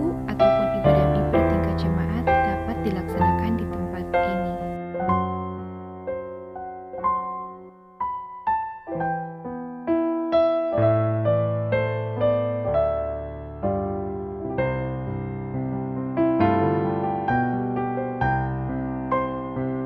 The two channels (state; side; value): identical; both; correlation 1.00